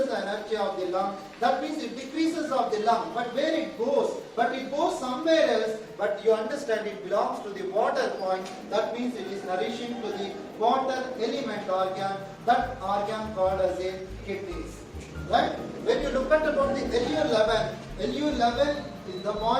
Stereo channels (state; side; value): identical; both; correlation 1.00